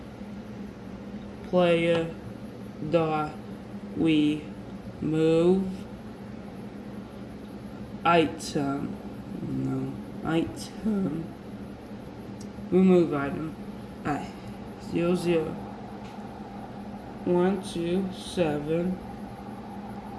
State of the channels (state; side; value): identical; both; correlation 1.00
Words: dot we move item. No, item. Remove item. Alright. 00127